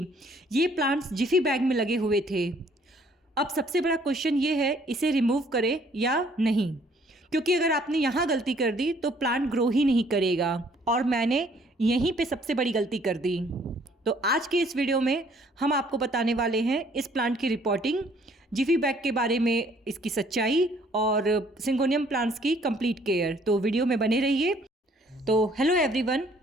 ये प्लांट्स जिफी बैग में लगे हुए थे। अब सबसे बड़ा क्वेश्चन ये है, इसे रिमूव करें या नहीं, क्योंकि अगर आपने यहाँ गलती कर दी तो प्लांट ग्रो ही नहीं करेगा और मैंने यहीं पे सबसे बड़ी गलती कर दी। तो आज के इस वीडियो में हम आपको बताने वाले हैं इस प्लांट की रिपोर्टिंग, जिफी बैग के बारे में इसकी सच्चाई और सिंगोनियम प्लांट्स की कंप्लीट केयर। तो वीडियो में बने रहिए। तो hello everyone,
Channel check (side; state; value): both; normal; correlation 0.61